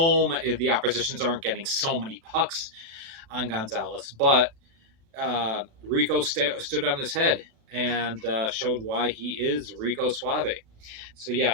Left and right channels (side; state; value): left; late; 36 ms